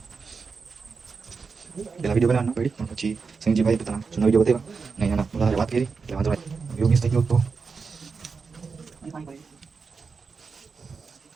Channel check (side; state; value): left; quieter; 5.0 dB